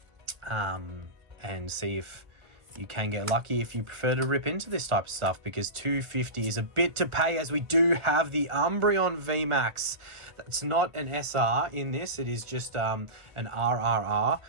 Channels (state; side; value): late; left; 1.4 ms